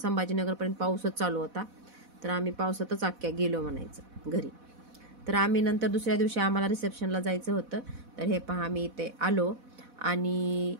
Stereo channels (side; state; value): left; late; 4.1 ms